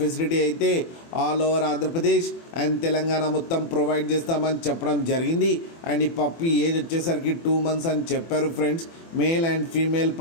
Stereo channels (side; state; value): right; late; 24 ms